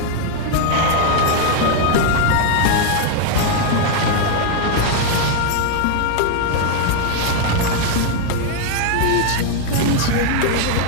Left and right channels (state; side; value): different; both; correlation 0.00